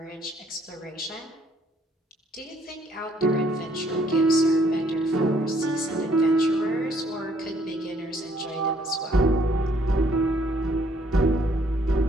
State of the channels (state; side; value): normal; both; correlation 0.65